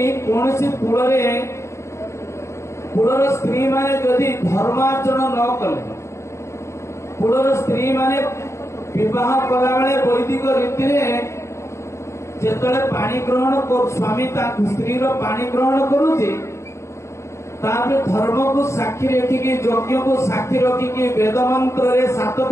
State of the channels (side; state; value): right; late; 0.14 ms